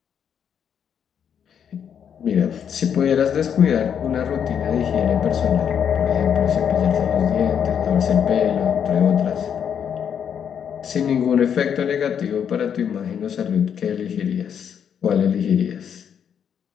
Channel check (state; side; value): quieter; right; 8.1 dB